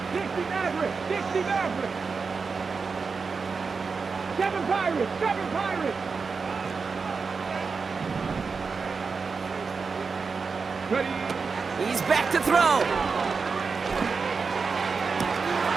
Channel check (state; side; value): quieter; left; 4.9 dB